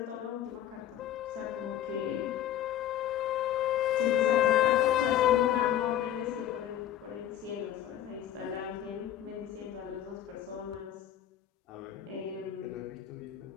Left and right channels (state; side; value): quieter; right; 11.4 dB